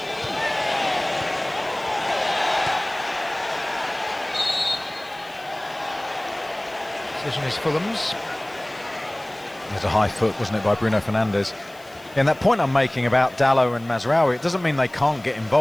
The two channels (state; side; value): noise; left; hiss, 26 dB below the sound